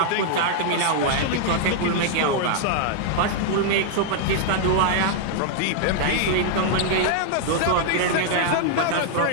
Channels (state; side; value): different; both; correlation 0.00